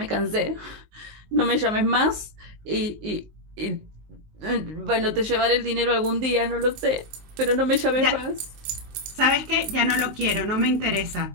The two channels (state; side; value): late; left; 19 ms